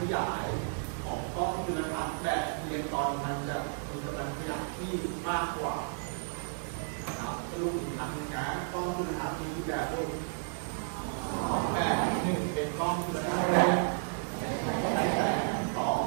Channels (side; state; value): left; silent; digital silence